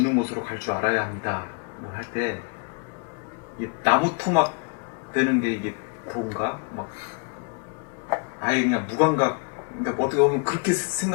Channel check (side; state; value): right; quieter; 37.1 dB